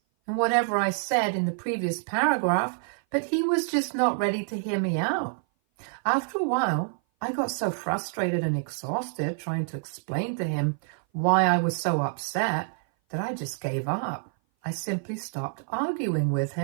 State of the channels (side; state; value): left; silent; 57 dB below the other